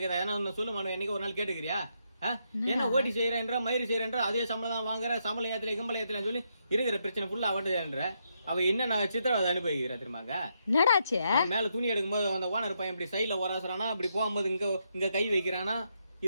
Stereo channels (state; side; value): inverted; both; correlation -0.79